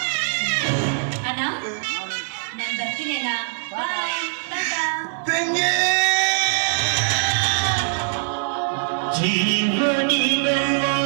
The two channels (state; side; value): silent; left; 64 dB below the other